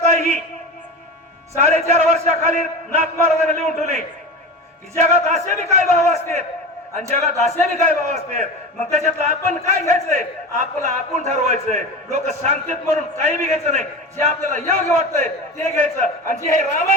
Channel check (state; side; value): normal; both; correlation 0.28